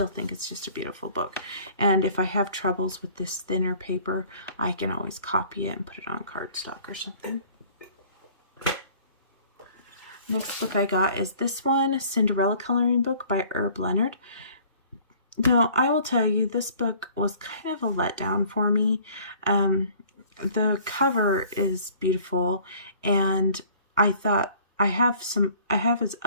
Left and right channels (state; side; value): inverted; both; correlation -0.52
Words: think it's just a beautiful book. And if I have troubles with this thinner paper, I can always copy it and put it on cardstock or something. Next book I got is this one, Cinderella coloring book by Herb Leonard. Now, I will tell you, this book was kind of a letdown for me. The cover is beautiful, and I thought I have his